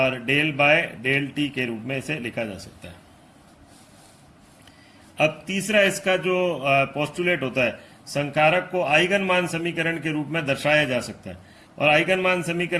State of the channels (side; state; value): both; identical; correlation 1.00